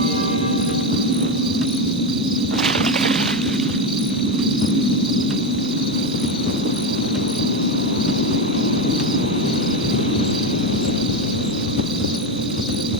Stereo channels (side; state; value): both; normal; correlation 0.13